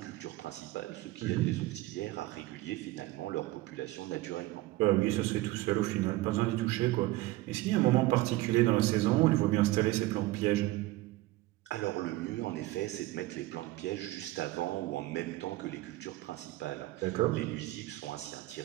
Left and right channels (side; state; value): left; quieter; 18.2 dB